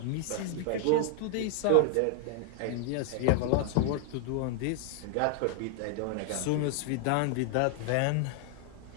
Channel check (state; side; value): different; both; correlation 0.00